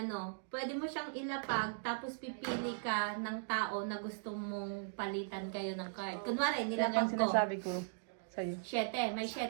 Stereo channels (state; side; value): silent; left; digital silence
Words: pwede mo siyang ilapag, tapos pipili ka ng tao na gusto mong palitan kayo ng card. Kunwari, Yan nilapag yung ko. sinasabi ko sa'yo. 7, may